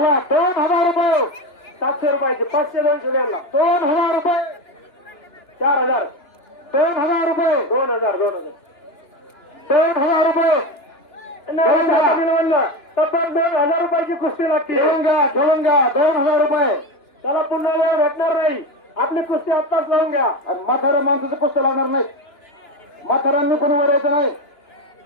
रुपये. 700 रुपयाची. 500 200 द्यायला. 2000 रुपये. 4000. 2000 रुपये. 2000 2000 रुपये. तब्बल 2000 रुपयाची कुस्ती लागते. ठेवून घ्या 2000 रुपये. त्याला पुन्हा वेळ भेटणार नाही. आपली कुस्ती आत्ताच लावून घ्या. आणि म्हाताऱ्या माणसाचं कुस्त्या लागणार नाही. म्हाताऱ्यांनी कोणी वर यायचं नाही.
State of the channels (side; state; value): right; late; 2.9 ms